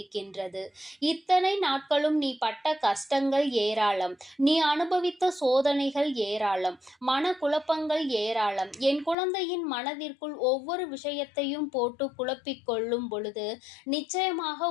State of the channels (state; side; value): drops out; right; at 9.2 s